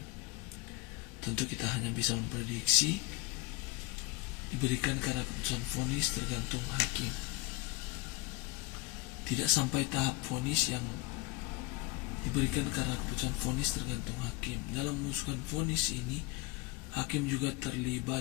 Tentu kita hanya bisa memprediksi diberikan karena keputusan vonis tergantung hakim. Tidak sampai tahap vonis yang diberikan karena keputusan vonis tergantung hakim. Dalam memutuskan vonis ini, hakim juga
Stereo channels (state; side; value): quieter; right; 20.1 dB